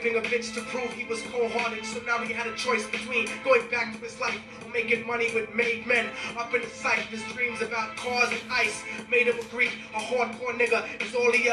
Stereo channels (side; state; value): both; identical; correlation 1.00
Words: a bitch to prove he was cold-hearted. So now he had a choice between going back to his life or making money with made men. Up in the sight, his dreams about cars and ice made him agree a hardcore nigga is all he